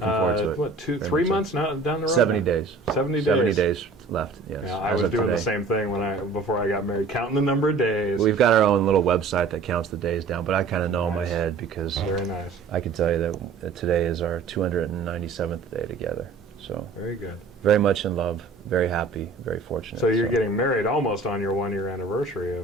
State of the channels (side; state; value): left; quieter; 4.2 dB